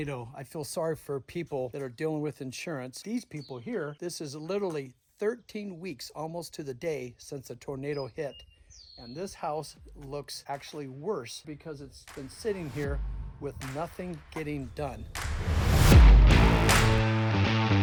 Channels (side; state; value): both; identical; correlation 1.00